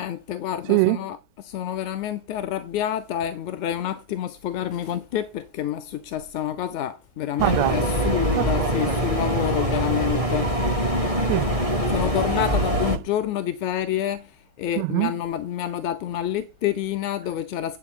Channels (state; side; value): late; left; 1.6 ms